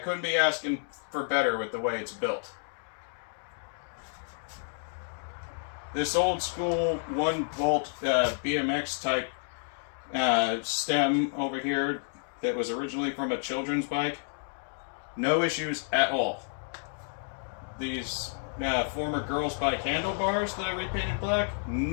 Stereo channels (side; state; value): right; silent; digital silence